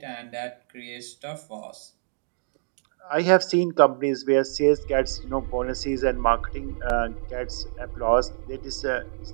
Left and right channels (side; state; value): left; silent; digital silence